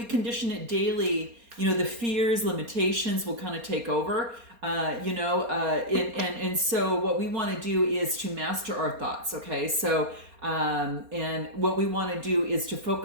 condition it daily, the fears, limitations will kind of take over. And so what we want to do is to master our thoughts. Okay, so and what we want to do is to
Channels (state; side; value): late; left; 4.3 ms